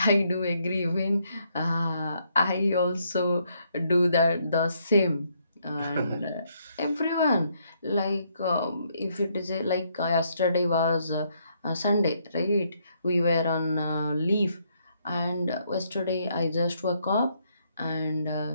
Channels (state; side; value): inverted; both; correlation -0.73